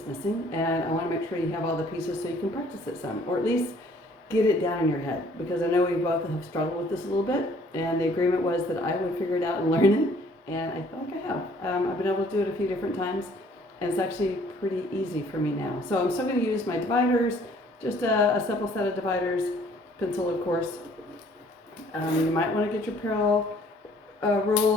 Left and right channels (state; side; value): normal; both; correlation 0.58